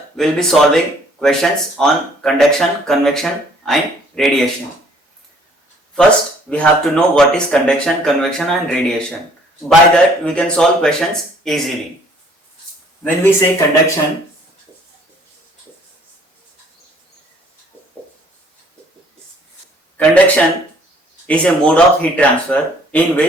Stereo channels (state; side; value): normal; both; correlation 0.59